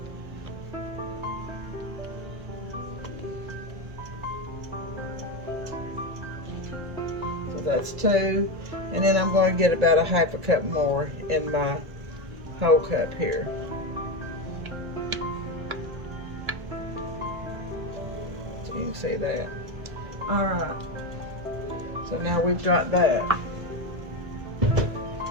So that's 2, and then I'm going to get about 1/2 cup more in my whole cup here. So you can see that. All right. So now we've got that.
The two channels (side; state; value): left; late; 1.6 ms